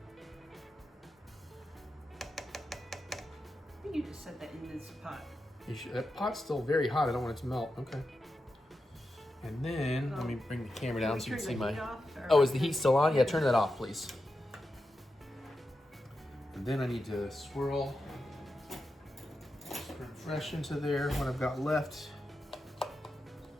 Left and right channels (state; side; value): normal; both; correlation 0.89